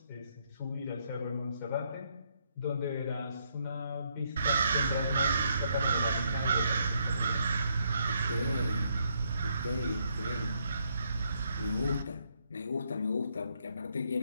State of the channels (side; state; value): both; inverted; correlation -0.74